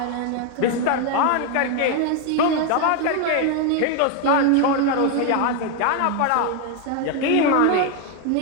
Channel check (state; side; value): different; both; correlation 0.01